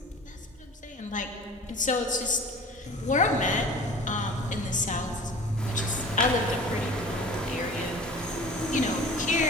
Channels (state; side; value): normal; both; correlation 0.41